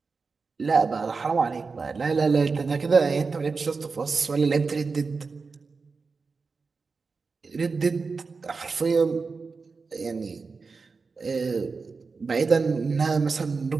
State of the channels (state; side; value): quieter; left; 4.6 dB